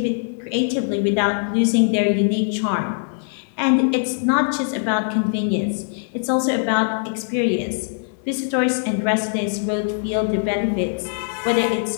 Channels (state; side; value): silent; right; digital silence